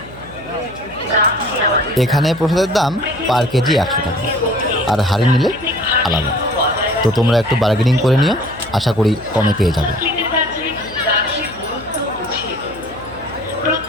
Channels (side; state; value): left; noise; hum, 19 dB below the sound